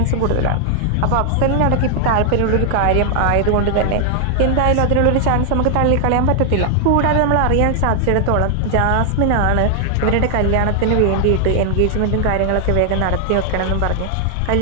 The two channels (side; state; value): both; different; correlation 0.00